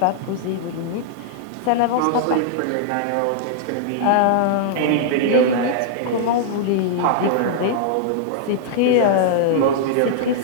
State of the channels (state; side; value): different; both; correlation -0.02